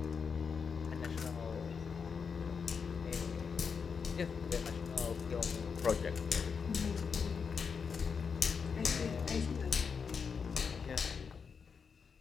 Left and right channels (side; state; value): right; quieter; 5.9 dB